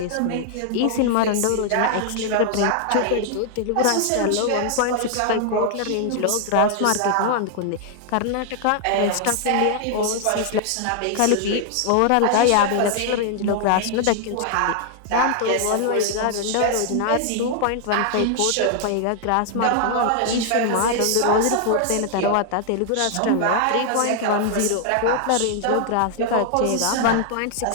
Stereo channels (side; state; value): both; different; correlation 0.00